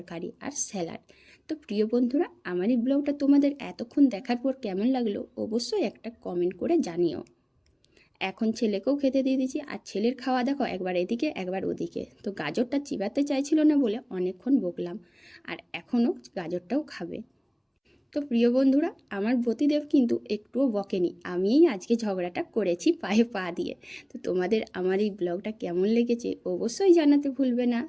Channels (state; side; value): identical; both; correlation 1.00